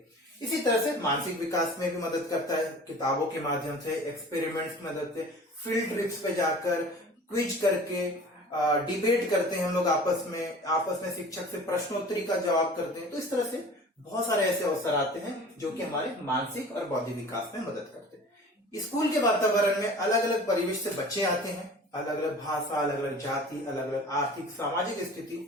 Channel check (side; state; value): both; normal; correlation 0.42